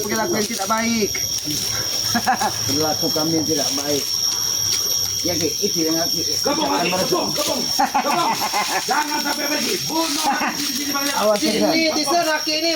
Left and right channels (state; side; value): identical; both; correlation 1.00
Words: yang tidak baik. Perilaku kami yang tidak baik. Ya, Ki, itu yang Aki. Kebong, kebong. Jangan sampai pergi. Bunuh di sini banyak. Awas, Tesan. Ini Tisan Aki ini